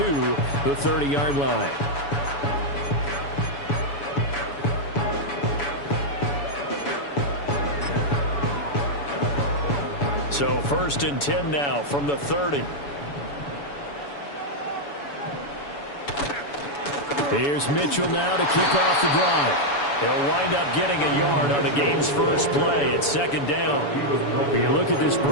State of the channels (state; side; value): late; right; 7.0 ms